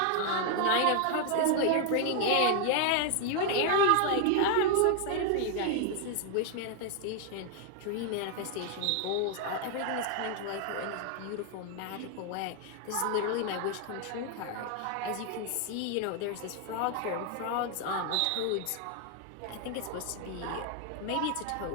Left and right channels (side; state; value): both; different; correlation 0.00